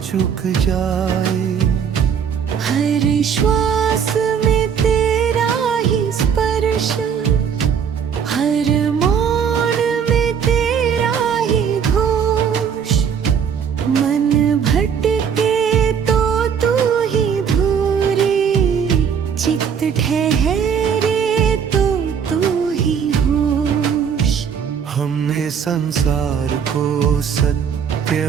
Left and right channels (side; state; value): left; quieter; 7.3 dB